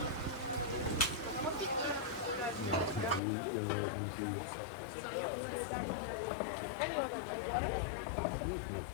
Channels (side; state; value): right; drops out; at 3.2 s